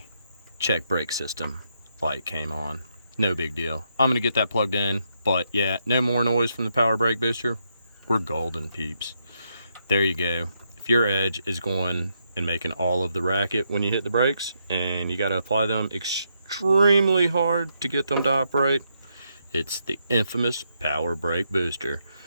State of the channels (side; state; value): both; inverted; correlation -0.79